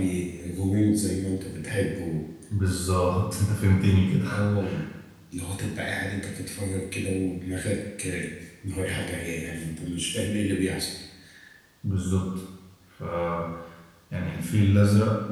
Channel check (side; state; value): both; identical; correlation 1.00